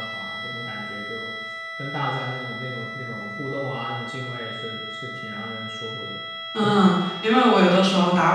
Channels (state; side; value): identical; both; correlation 1.00